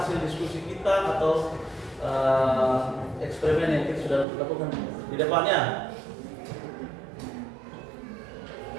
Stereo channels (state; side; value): drops out; left; at 4.2 s